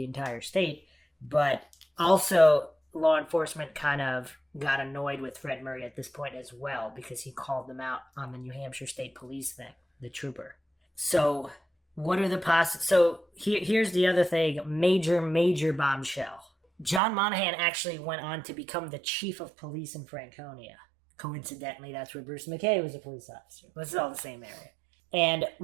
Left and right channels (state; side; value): drops out; left; at 17.0 s